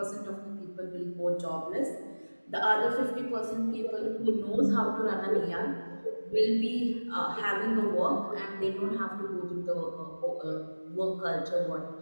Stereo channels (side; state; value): both; inverted; correlation -1.00